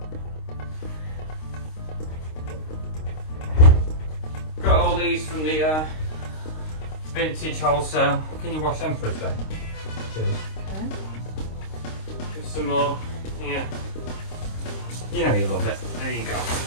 Got all these from the vintage wholesale. Can you wash them for us, babe? Cheers. Okay. Just some more. Yeah. You know you love it. There you go.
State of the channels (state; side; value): late; right; 26 ms